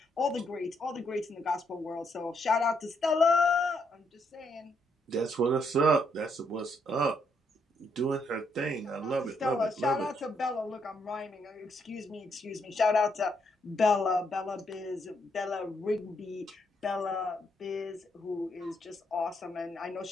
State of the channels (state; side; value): normal; both; correlation 0.75